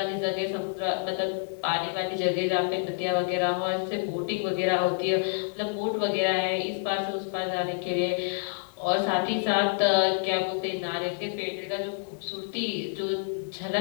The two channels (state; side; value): silent; right; 59 dB below the other